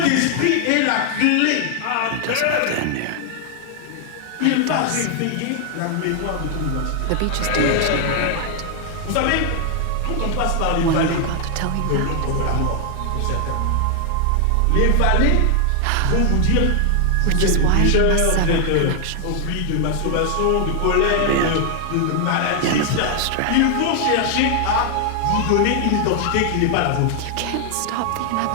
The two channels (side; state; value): both; different; correlation 0.00